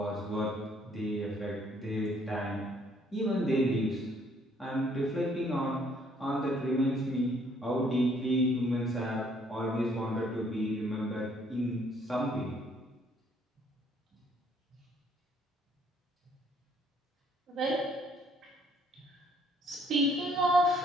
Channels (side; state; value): both; normal; correlation 0.64